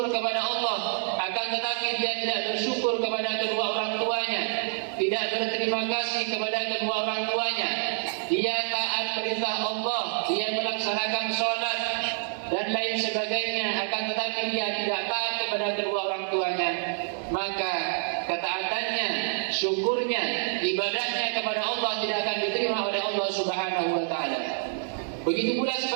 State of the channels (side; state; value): left; silent; digital silence